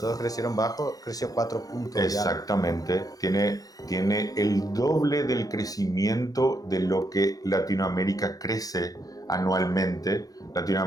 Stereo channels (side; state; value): right; late; 0.18 ms